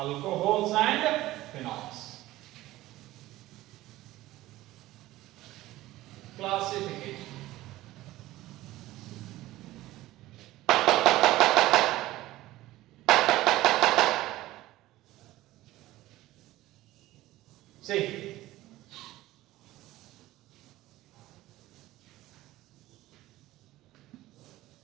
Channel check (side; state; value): left; quieter; 16.6 dB